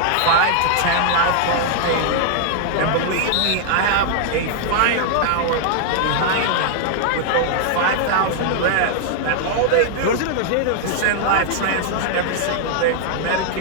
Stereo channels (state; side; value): different; both; correlation 0.00